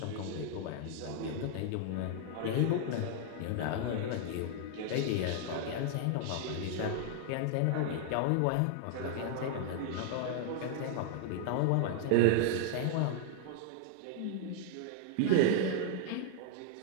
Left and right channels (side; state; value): both; different; correlation 0.00